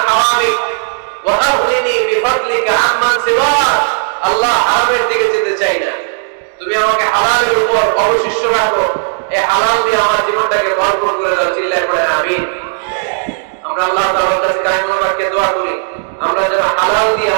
হারামিক ওয়া আগনিনি বিফadলিকা আম্মান সিওয়াক। আল্লাহ হারামের দিকে যেতে চাই না, তুমি আমাকে হালালের উপর অবশিষ্ট রাখো, এই হালাল দিয়ে আমার জীবনটাকে ভরপুর করে দাও। চিল্লায় পড়েন আমিন। আমরা আল্লাহ তাআলার কাছে কায়মুল বাক্যে দোয়া করি, আমরা যেন হালাল দিয়ে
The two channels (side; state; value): left; silent; digital silence